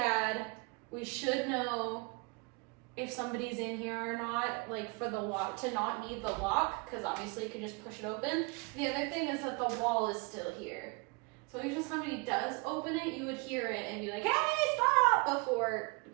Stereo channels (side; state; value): left; quieter; 29.3 dB